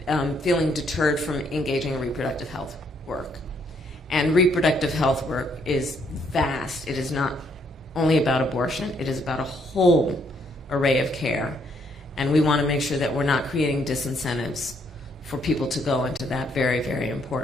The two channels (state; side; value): normal; both; correlation 0.70